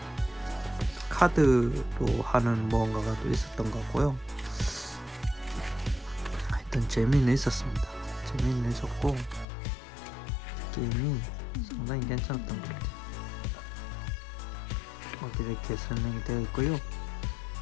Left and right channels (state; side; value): drops out; right; at 9.5 s